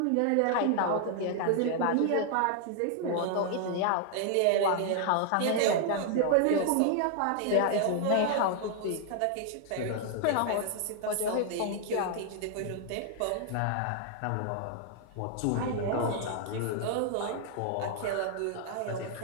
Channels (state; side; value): different; both; correlation 0.00